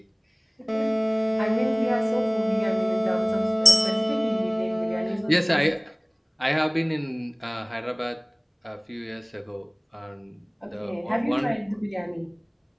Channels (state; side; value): identical; both; correlation 1.00